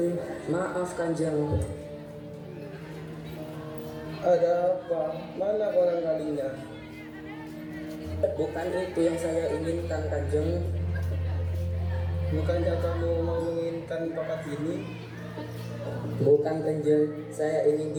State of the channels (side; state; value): both; identical; correlation 1.00